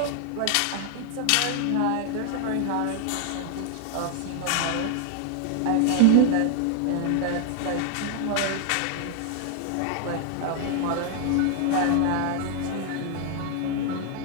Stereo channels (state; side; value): different; both; correlation 0.00